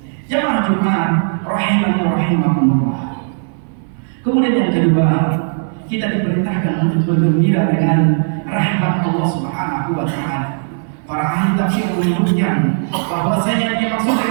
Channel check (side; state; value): left; silent; 60 dB below the other